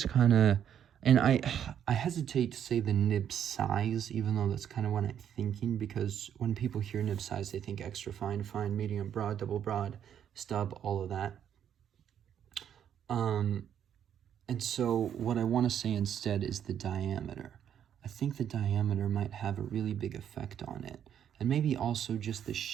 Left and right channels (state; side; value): quieter; left; 9.3 dB